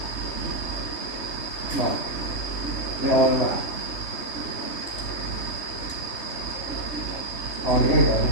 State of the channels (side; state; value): right; late; 3.3 ms